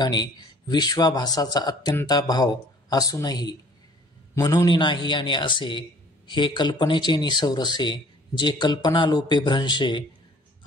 विश्वाभासाचा अत्यंताभाव असूनही म्हणून नाही आणि असे हे कल्पनेचे निसौरसे जे कल्पनालोपे भ्रंशे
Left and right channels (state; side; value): normal; both; correlation 0.53